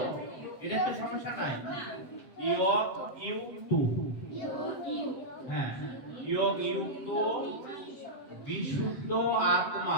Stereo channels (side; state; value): right; late; 7.7 ms